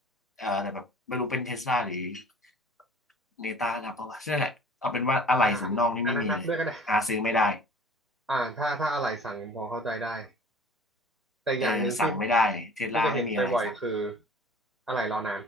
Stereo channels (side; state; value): both; normal; correlation 0.47